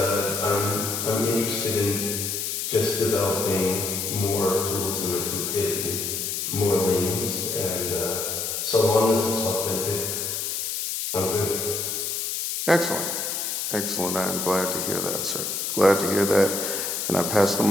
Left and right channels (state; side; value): noise; left; hiss, 2 dB below the sound